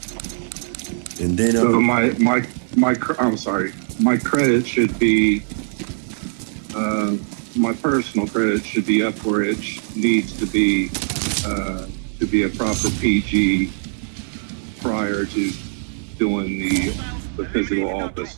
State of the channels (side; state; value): left; silent; 60 dB below the other